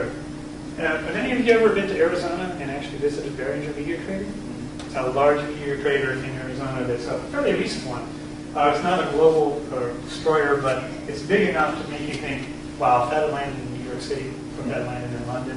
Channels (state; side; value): identical; both; correlation 1.00